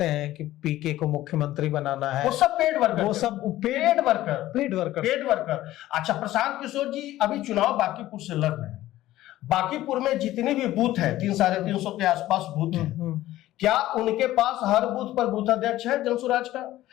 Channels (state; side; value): quieter; right; 15.1 dB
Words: हैं कि पीके को मुख्यमंत्री बनाना है, वो सब पेड वर्कर, वो सब पेड वर्कर। अच्छा, प्रशांत किशोर जी अभी चुनाव बांकीपुर से लड़ रहे हैं। बांकीपुर में जितने भी बूथ है, 300-350 के आसपास बूथ है, क्या उनके पास हर बूथ पर बूथ अध्यक्ष है जनसुराज का?